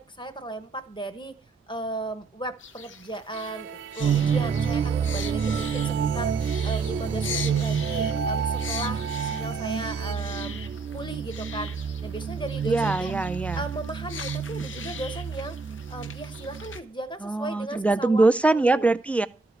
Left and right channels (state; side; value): quieter; left; 3.8 dB